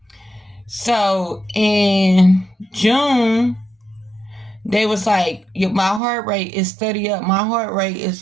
So in June, they was like, my heart rate is steady up. My heart rate is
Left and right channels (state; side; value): drops out; left; at 6.0 s